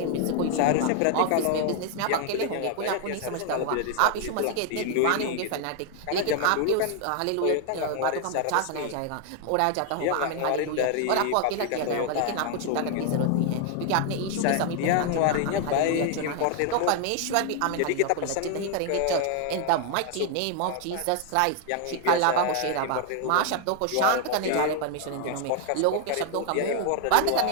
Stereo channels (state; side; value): different; both; correlation 0.00